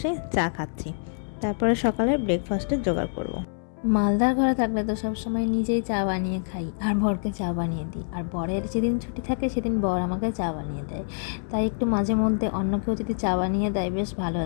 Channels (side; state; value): right; silent; 61 dB below the other